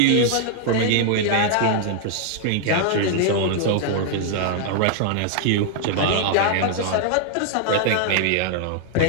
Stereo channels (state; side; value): different; both; correlation 0.00